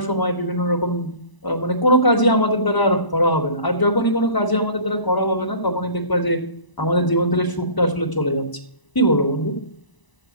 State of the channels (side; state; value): right; late; 1.0 ms